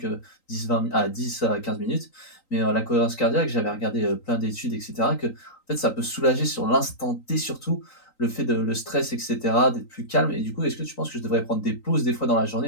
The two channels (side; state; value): right; late; 3.9 ms